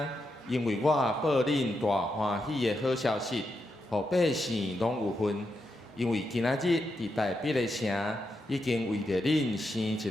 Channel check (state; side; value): normal; both; correlation 0.84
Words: 因为我报恁大欢喜的好消息，互百姓拢有份。因为今仔日伫大必的城，已经为着恁生一